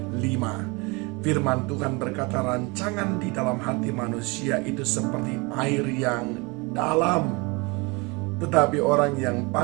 5. Firman Tuhan berkata, rancangan di dalam hati manusia itu seperti air yang dalam, tetapi orang yang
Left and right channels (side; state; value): left; quieter; 27.5 dB